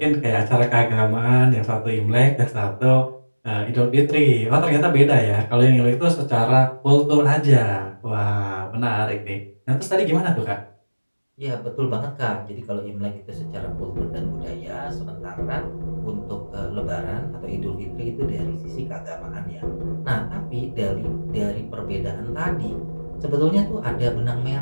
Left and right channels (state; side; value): inverted; both; correlation -1.00